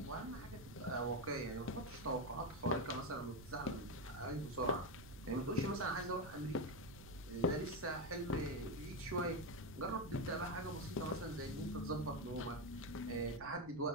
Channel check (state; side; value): noise; right; rumble, 15 dB below the sound